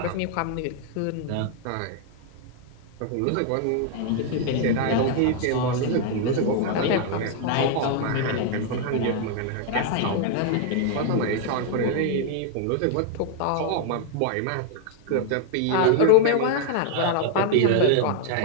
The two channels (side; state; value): both; different; correlation 0.00